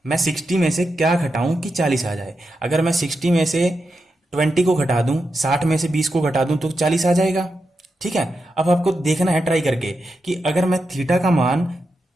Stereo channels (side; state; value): both; normal; correlation 0.87